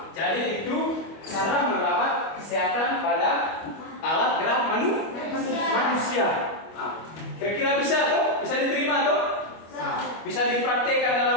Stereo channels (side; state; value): right; late; 25 ms